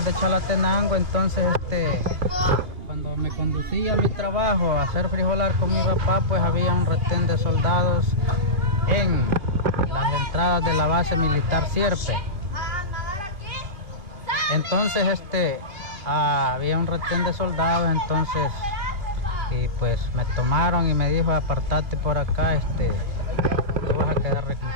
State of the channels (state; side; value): late; left; 2.6 ms